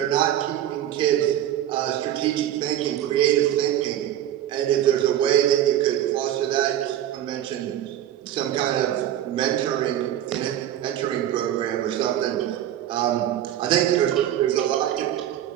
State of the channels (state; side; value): quieter; left; 11.6 dB